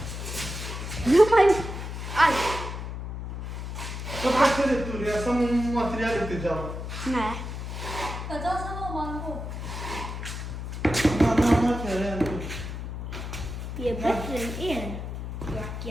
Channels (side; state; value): left; noise; hum, 6 dB below the sound